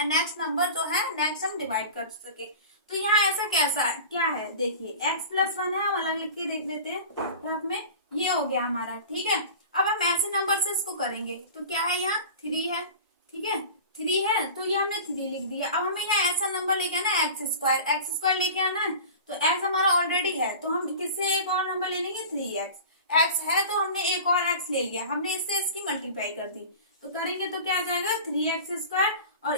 नंबर जो है नेक्स्ट हम डिवाइड कर सके। तो यहाँ ऐसा कैसा है, क्या है, देखिए x प्लस 1 है, हम अलग लिख के देख लेते हैं, तो में ये हो गया हमारा। ठीक है, अब हम ऐसे नंबर से इसको करेंगे, तो क्या है, यहाँ 3 है। ठीक है, 3 है तो ये हमने 3 लिख दिया। अब हमें यहाँ ऐसा नंबर लेके आना है x² लेके आना है, तो x हमारा ऑलरेडी है, तो हम किससे एक और नंबर ले लेंगे, 3x। x है तो हमने एक और x ले लिया, हमने इससे इसकी मल्टीप्लाई कर दी, तो करेंगे तो क्या आ जाएगा 3x², और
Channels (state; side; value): inverted; both; correlation -0.36